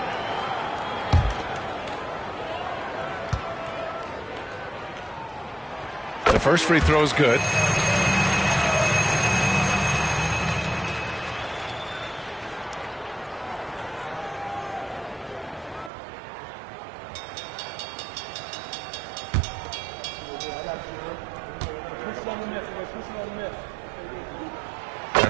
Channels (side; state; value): left; drops out; at 15.9 s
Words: The first free throw is good.